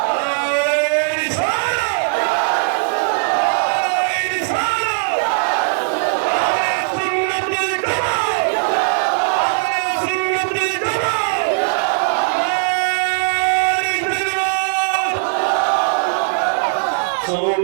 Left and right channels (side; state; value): left; silent; digital silence